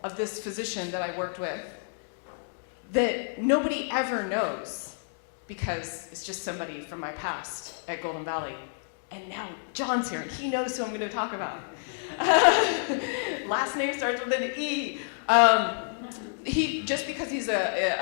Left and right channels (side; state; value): right; silent; digital silence